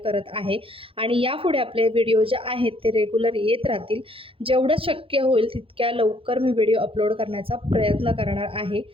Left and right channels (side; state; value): left; late; 0.27 ms